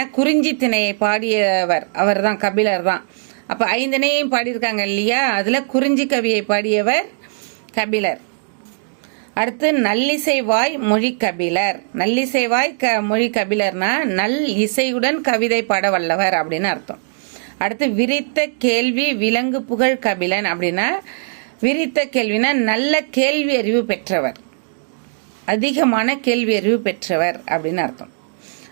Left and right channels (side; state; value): left; silent; digital silence